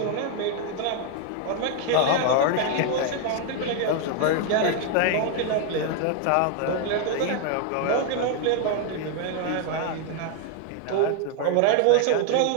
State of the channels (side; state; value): both; different; correlation 0.00